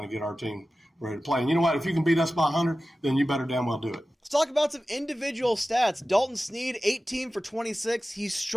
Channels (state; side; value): normal; both; correlation 0.95